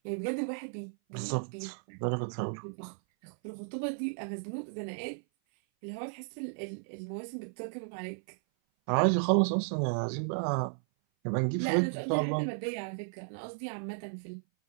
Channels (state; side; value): silent; left; 55 dB below the other